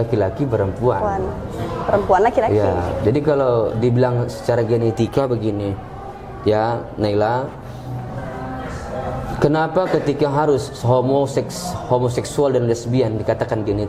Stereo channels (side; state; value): both; identical; correlation 1.00